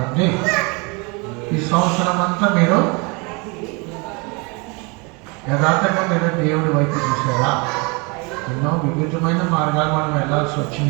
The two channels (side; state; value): left; quieter; 29.6 dB